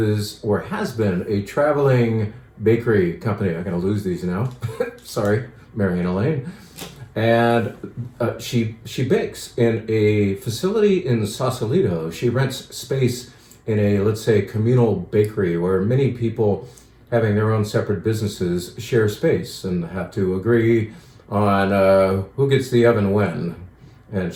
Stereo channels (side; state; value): both; identical; correlation 1.00